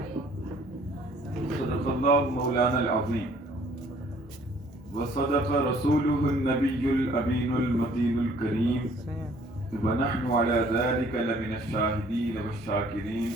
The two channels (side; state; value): both; normal; correlation 0.58